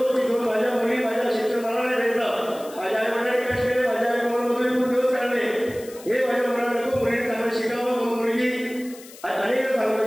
की दोन माझ्या मुली माझ्या शिक्षण मला नाही भेटलं, माझ्या आई वडिलांनी कष्ट केले, माझ्या आई मुलांमधून खूप दिवस काढले, हे माझ्या मुलांना नको, मुलीने चांगलं शिकावं. मुलगी अनेक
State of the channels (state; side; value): noise; left; hiss, 19 dB below the sound